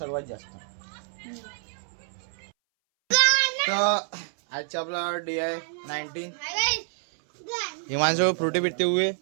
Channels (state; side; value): silent; left; 60 dB below the other